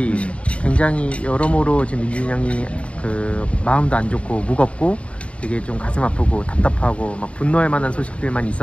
굉장히 여러모로 지금 민준형이 마음도 안 좋고 무겁고 되게 좀 가슴 아프고 답답하고 분노할 만한 소식들만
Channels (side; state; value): right; late; 0.062 ms